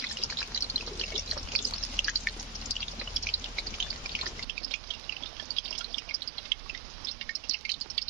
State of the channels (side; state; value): left; drops out; at 4.5 s